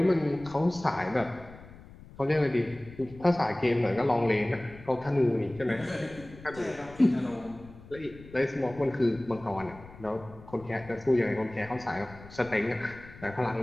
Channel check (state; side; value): noise; left; rumble, 19 dB below the sound